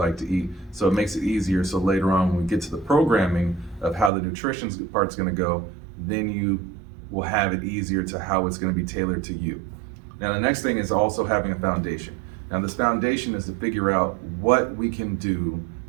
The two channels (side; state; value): left; drops out; at 4.1 s